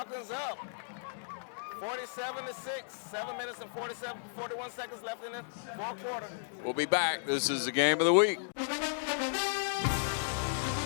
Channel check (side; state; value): right; silent; digital silence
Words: up. 47-6. 7 minutes and 41 seconds left in the fourth quarter. We'll be back. This is the game of the week.